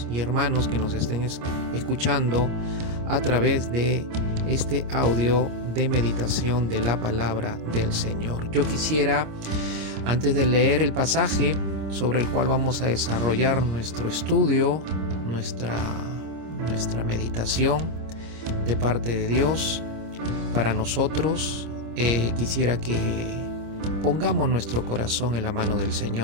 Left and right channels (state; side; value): late; left; 26 ms